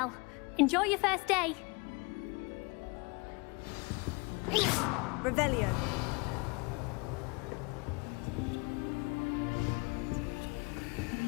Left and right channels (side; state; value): right; quieter; 28.6 dB